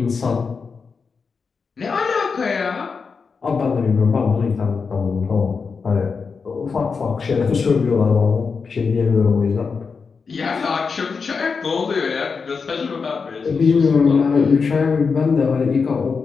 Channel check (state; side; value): quieter; right; 5.2 dB